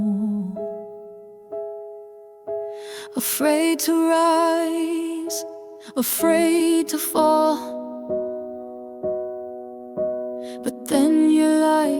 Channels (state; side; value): identical; both; correlation 1.00